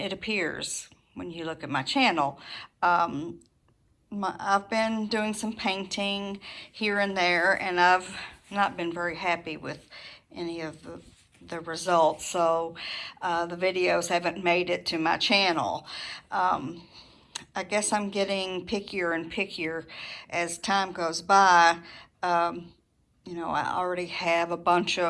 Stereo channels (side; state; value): both; identical; correlation 1.00